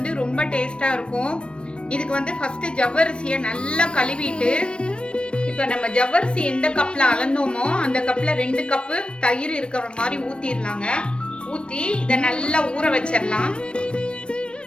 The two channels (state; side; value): late; right; 0.057 ms